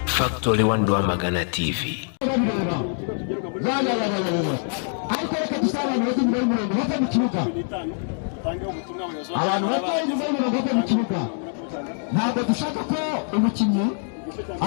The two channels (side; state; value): right; silent; 58 dB below the other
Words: Factory Wandwa Magana TV. Ntabwo dushaka ko umukinnyi